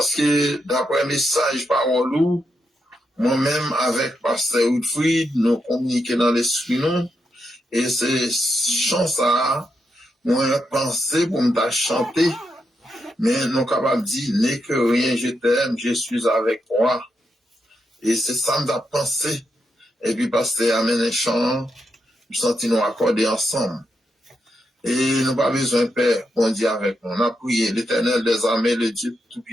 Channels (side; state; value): both; normal; correlation 0.83